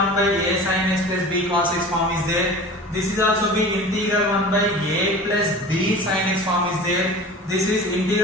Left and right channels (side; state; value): both; normal; correlation 0.37